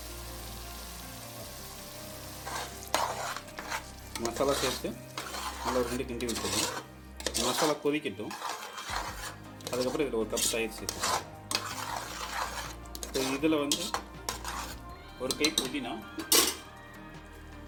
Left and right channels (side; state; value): both; identical; correlation 1.00